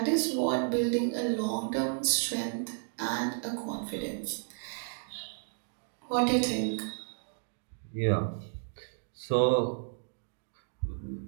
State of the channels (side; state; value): left; silent; digital silence